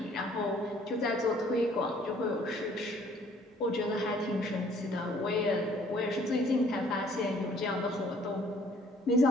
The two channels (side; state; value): both; normal; correlation 0.59